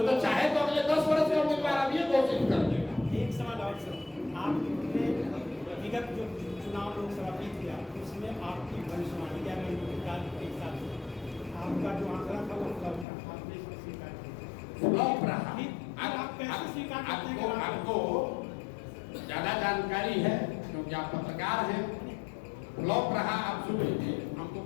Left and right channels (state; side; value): drops out; right; at 13.1 s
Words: चाहे तो अगले 10 वर्ष का उम्मीदवार अब ये घोषित कर देगा। एक सवाल और सर, आपने विगत जो चुनाव लोकसभा जीत गया उसमें आपकी भविष्यवाणी या के हिसाब से आपका जो आंकड़ा था वो फ्लॉप था, आपने इसको स्वीकार किया। फ्लॉप रहा। आप कैसे स्वीकार करते हैं? आपको ज्यादा जानकारी है क्योंकि आप पत्रकार हैं। फ्लॉप रहा, आप सुन लीजिए।